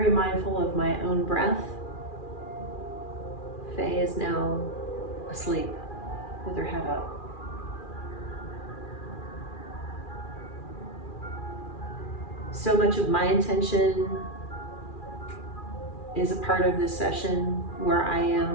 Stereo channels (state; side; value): late; right; 2.4 ms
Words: mindful of my own breath. Faye is now asleep. with her head up. So much of my intention is a part of this session where I